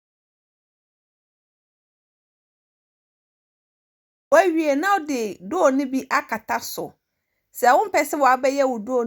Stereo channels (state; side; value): identical; both; correlation 1.00